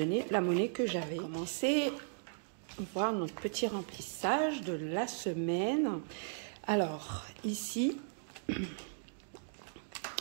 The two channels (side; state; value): left; silent; digital silence